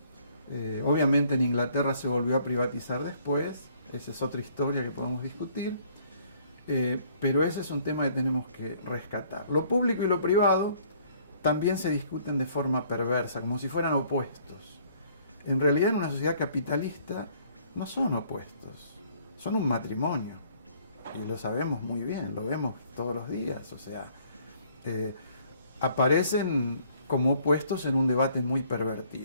Obviamente en Inglaterra se volvió a privatizar después, esa es otra historia que podemos discutir, pero ese es un tema que tenemos que rescatar. Lo público y lo privado también se discuten de forma perversa, como si fueran opuestos. En realidad en una sociedad capitalista no son opuestos, son un matrimonio, y lo sabemos muy bien, lo vemos todos los días, o sea, aparecen como opuestos en un debate muy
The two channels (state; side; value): inverted; both; correlation -0.61